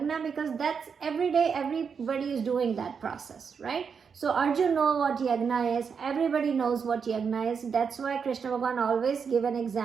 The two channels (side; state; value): left; quieter; 6.2 dB